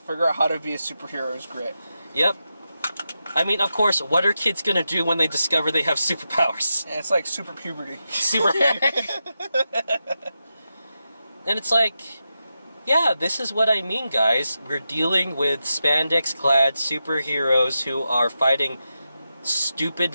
out how to be a superhero is great. Yep. I mean, of course, what are kids gonna do when they discover they have superpowers? Yeah, it's like super puberty. And it's like, yeah, this is what I mean, guys. We're dealing with spandex-clad superheroes who are fighting stupid,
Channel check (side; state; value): both; inverted; correlation -0.89